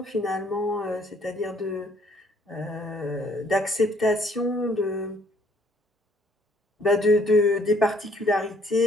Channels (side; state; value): both; normal; correlation 0.63